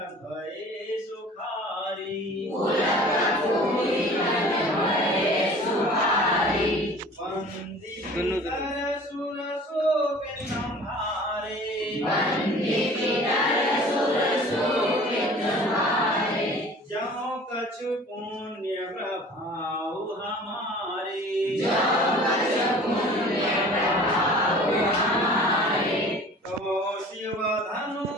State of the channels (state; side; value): normal; both; correlation 0.45